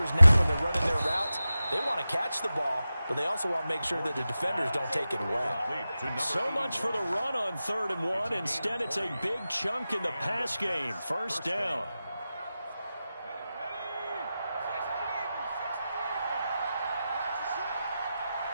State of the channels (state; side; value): inverted; both; correlation -0.93